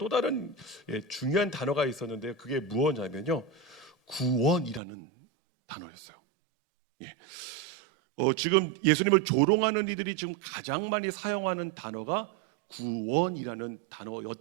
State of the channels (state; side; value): drops out; left; at 4.8 s